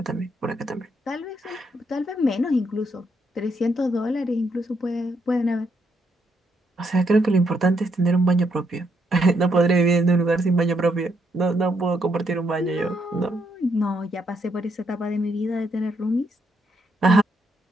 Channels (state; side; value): normal; both; correlation 0.76